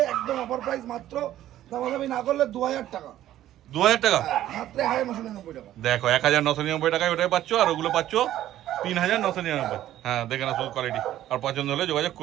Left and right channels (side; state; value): left; quieter; 13.0 dB